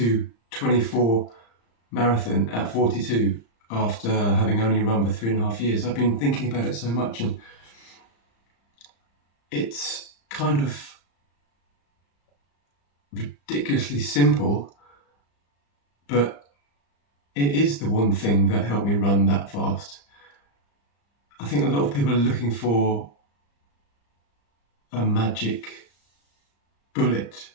marathon at 42 after having only run for 3.5 years. I've been thinking about it so much, and it's kind of ridiculously simple, but it is the one thing that helped me run that fast. I think a lot of people are looking for a magic bullet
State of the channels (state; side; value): late; right; 35 ms